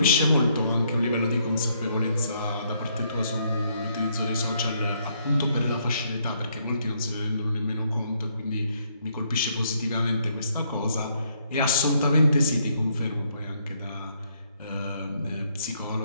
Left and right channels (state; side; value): inverted; both; correlation -0.71